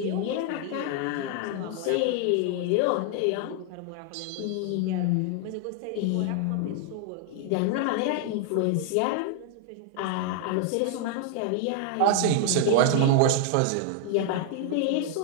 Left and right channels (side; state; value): both; different; correlation 0.00